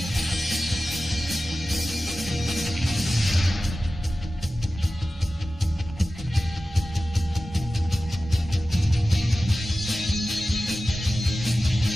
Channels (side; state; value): both; normal; correlation 0.95